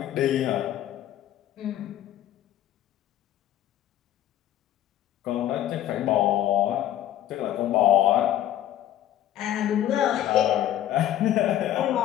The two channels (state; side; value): quieter; right; 12.1 dB